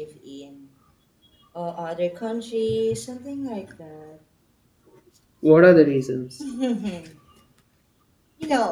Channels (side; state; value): both; identical; correlation 1.00